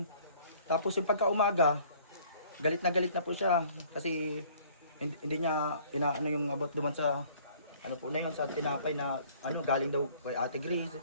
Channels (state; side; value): inverted; both; correlation -0.56